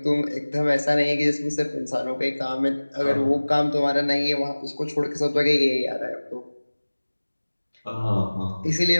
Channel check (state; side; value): inverted; both; correlation -1.00